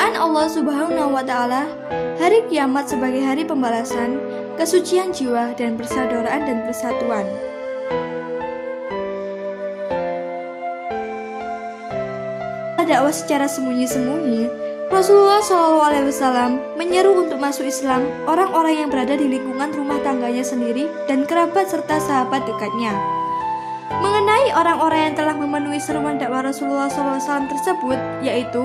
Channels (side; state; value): both; identical; correlation 1.00